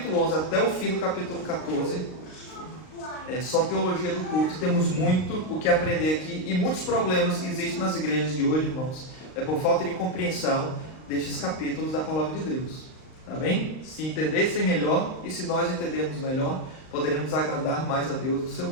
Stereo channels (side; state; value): right; late; 38 ms